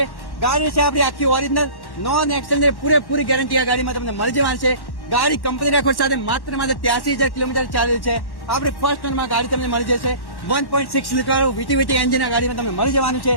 ગાડી છે આપણી આખી ઓરિજિનલ નોન એક્સેલની પૂરેપૂરી ગેરંટી આ ગાડીમાં તમને મળી જવાની છે. ગાડી કંપની રેકોર્ડ સાથે માત્ર 83,000 કિલોમીટર ચાલેલ છે. આપણી ફર્સ્ટ ઓનરમાં ગાડી તમને મળી જશે. 1.6 લીટર વીટી એન્જિન આ ગાડીમાં તમને મળી જવાનું છે.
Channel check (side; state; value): right; late; 1.1 ms